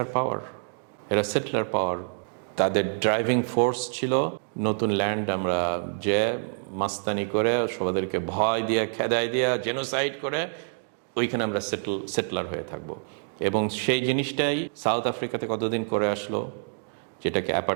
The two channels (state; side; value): silent; left; digital silence